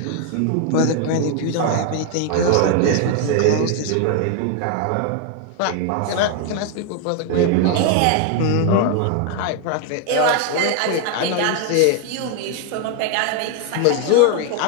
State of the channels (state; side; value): different; both; correlation 0.00